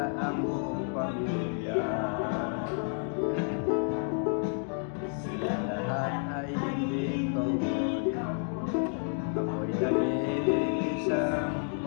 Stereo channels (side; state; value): right; silent; 58 dB below the other